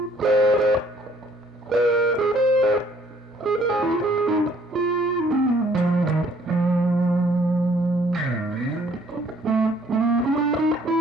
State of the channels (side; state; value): both; normal; correlation 0.61